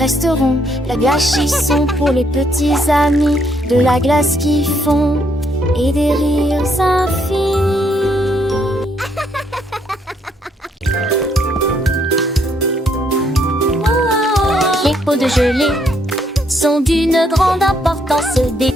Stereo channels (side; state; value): both; normal; correlation 0.71